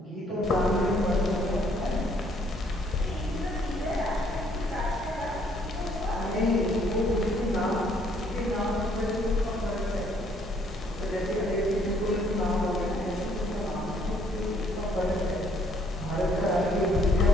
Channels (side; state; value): both; normal; correlation 0.65